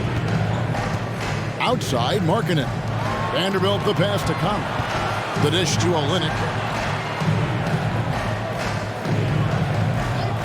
Outside, Markkanen. Vanderbilt the pass to Conley. The dish to Olynyk.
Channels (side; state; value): both; identical; correlation 1.00